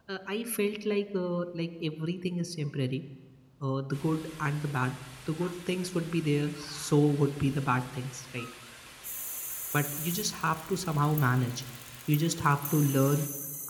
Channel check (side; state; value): both; identical; correlation 1.00